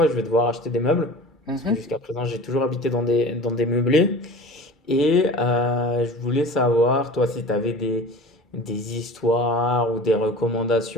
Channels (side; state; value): both; normal; correlation 0.39